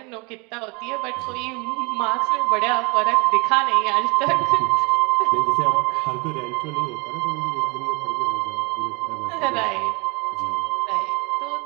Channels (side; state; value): left; quieter; 28.8 dB